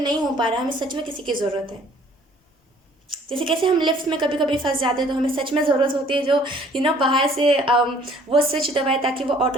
हो पा रहा है, हमें सच में किसी की ज़रूरत है। जैसे कैसे हम लिफ्ट में कभी कभी फंस जाते हैं, तो हमें सच में ज़रूरत होती है जो बाहर से वो स्विच दबाए ताकि वो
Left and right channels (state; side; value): normal; both; correlation 0.57